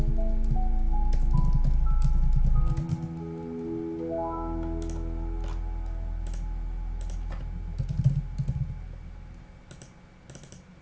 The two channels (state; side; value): identical; both; correlation 1.00